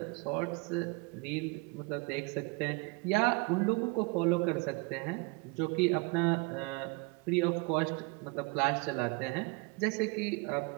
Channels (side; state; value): left; quieter; 28.0 dB